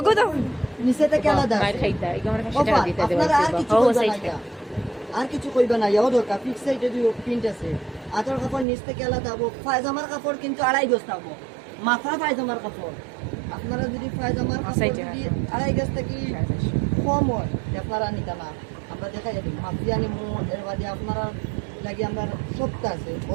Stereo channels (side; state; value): left; drops out; at 8.7 s